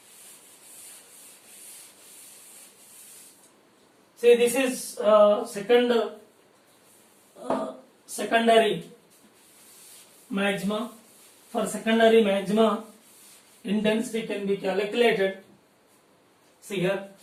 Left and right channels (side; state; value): both; identical; correlation 1.00